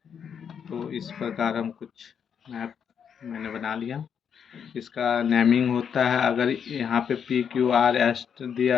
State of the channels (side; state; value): right; quieter; 7.6 dB